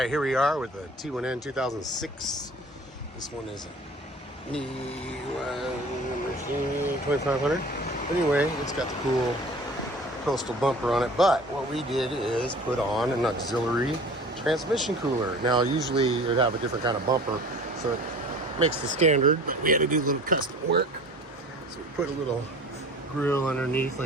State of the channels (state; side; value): normal; both; correlation 0.43